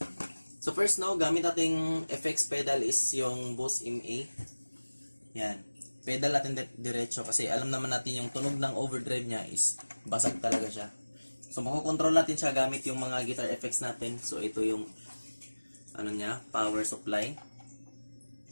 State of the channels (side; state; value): both; inverted; correlation -1.00